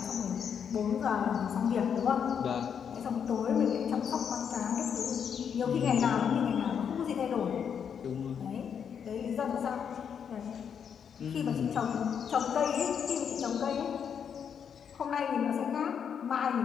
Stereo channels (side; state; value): right; quieter; 7.6 dB